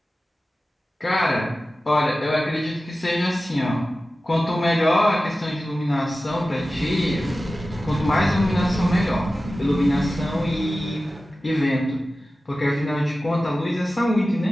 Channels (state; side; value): normal; both; correlation 0.95